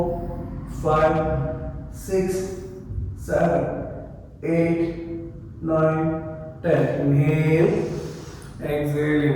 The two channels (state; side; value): identical; both; correlation 1.00